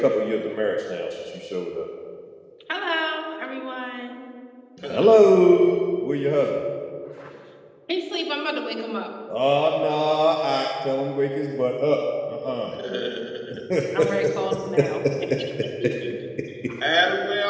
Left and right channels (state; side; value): identical; both; correlation 1.00